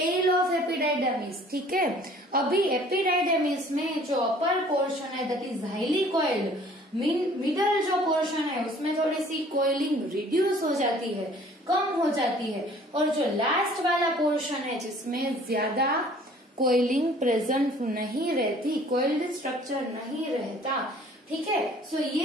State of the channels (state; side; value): normal; both; correlation 0.53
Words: of epididymis. ठीक है, अभी एपिडाइडर्मिस में जो अपर पोर्शन है that is highly coiled, middle जो पोर्शन है उसमें थोड़ी सी कोयलिंग रिड्यूस हो जाती है, कम हो जाती है, और जो लास्ट वाला पोर्शन है जिसमें ज्यादा कोयलिंग प्रेजेंट नहीं रहती, कोइल्ड स्ट्रक्चर नहीं रहता। ठीक है, सो